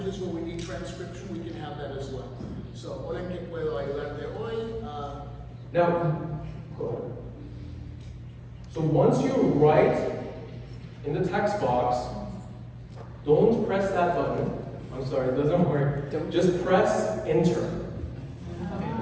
where we need transcription, we can have that as well. So, hola, ¿en qué puedo ayudarte hoy? Now, go ahead. So once you write in the text box, don't press that button. I'm sorry, it doesn't work. Just press enter.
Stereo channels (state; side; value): identical; both; correlation 1.00